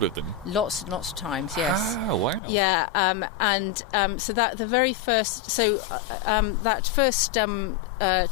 with them? Lots and lots of times, yes. Oh, wow. Yeah, so that the very first, that first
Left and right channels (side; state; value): right; drops out; at 2.4 s